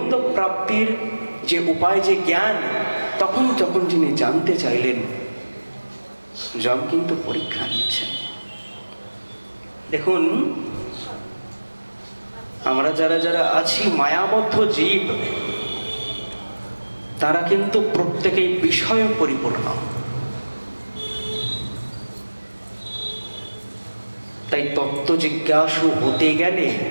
প্রাপ্তির যে উপায়, যে জ্ঞান, তখন যখন যিনি জানতে চাইলেন, যম কিন্তু পরীক্ষা নিচ্ছেন। দেখুন, আমরা যারা যারা আছি মায়াবদ্ধ জীব, তারা কিন্তু প্রত্যেকেই বিষয় পরিপূর্ণ। তাই তত্ত্ব জিজ্ঞাসু হতে গেলে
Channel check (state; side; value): inverted; both; correlation -1.00